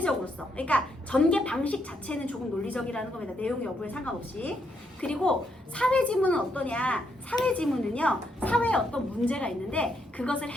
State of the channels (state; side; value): normal; both; correlation 0.76